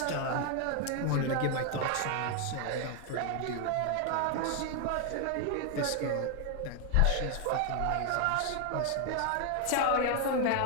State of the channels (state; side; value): different; both; correlation 0.00